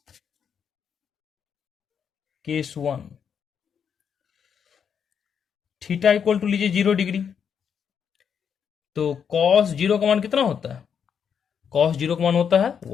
case 1, theta equal to लीजिए 0 डिग्री, तो कॉस 0 का मान कितना होता है, कॉस 0 का मान होता है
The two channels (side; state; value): right; quieter; 7.4 dB